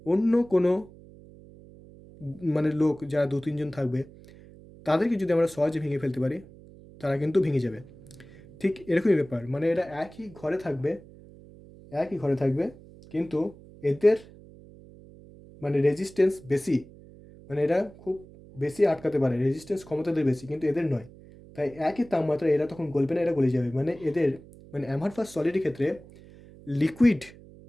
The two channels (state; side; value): noise; right; hum, 21 dB below the sound